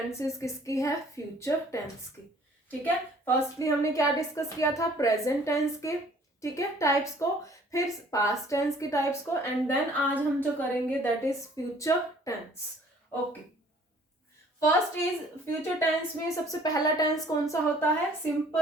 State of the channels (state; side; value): normal; both; correlation 0.56